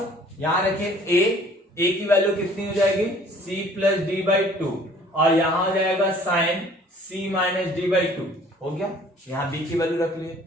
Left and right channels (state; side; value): normal; both; correlation 0.54